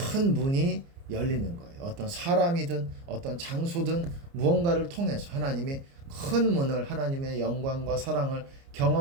문이 열리는 거예요. 어떤 사람이든 어떤 장소든 무언가를 통해서 하나님이 큰 문을, 하나님의 영광과 사랑을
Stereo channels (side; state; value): left; late; 29 ms